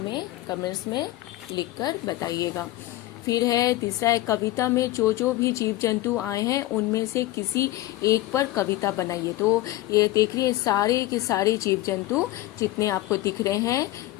कमेंट्स में लिखकर बताइएगा। फिर है तीसरा है कविता में जो भी जीव जंतु आए हैं उनमें से किसी एक पर कविता बनाइए। तो ये देख रही है सारे के सारे जीव जंतु जितने आपको दिख रहे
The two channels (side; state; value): right; quieter; 16.6 dB